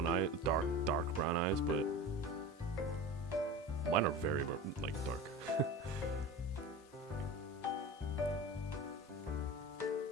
eyes, dark brown eyes, but mine are very like dark.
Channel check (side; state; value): both; normal; correlation 0.32